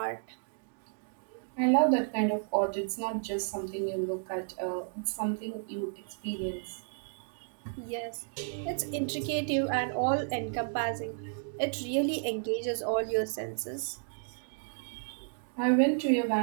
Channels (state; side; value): silent; left; digital silence